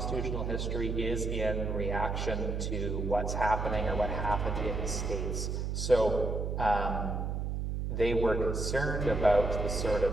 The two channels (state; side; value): noise; right; hum, 2 dB below the sound